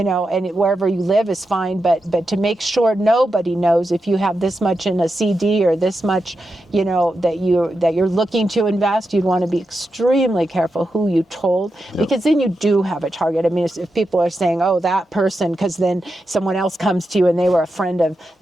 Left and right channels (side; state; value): both; normal; correlation 0.88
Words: know, and wherever you live is fine, but to make sure nobody knows if you have this much in a CD or this much, you know, that you're looking to invest, you'd want to be extremely careful who you told, because then you do have a target. I mean, if people are saying, oh, that person, because then someone else comes to you and they were a friend of